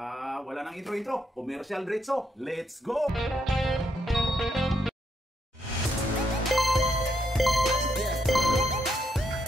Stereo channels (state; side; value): normal; both; correlation 0.78